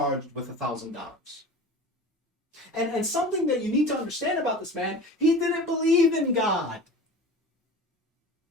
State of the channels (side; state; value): both; normal; correlation 0.36